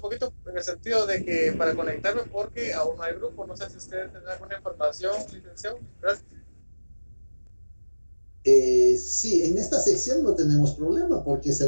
poquito en el sentido de que para conectarme, porque aún no hay grupo. No sé si ustedes tienen alguna información, licenciado. Gracias. Sí, en esta sección no tenemos problema porque se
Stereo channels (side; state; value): both; inverted; correlation -1.00